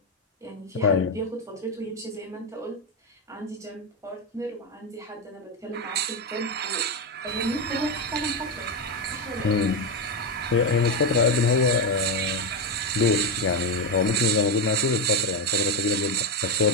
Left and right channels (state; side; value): normal; both; correlation 0.08